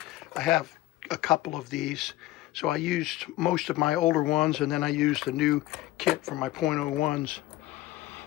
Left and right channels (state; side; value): quieter; right; 16.4 dB